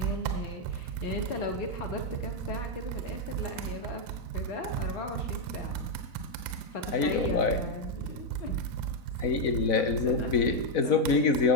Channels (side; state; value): right; late; 4.0 ms